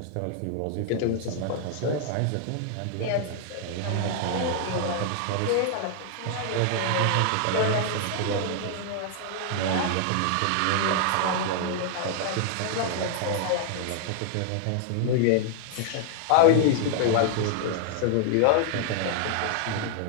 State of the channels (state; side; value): different; both; correlation 0.00